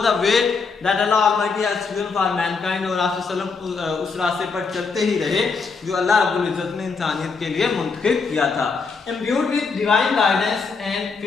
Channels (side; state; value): right; quieter; 4.8 dB